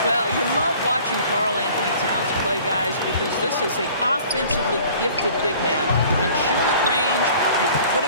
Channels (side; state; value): both; inverted; correlation -0.50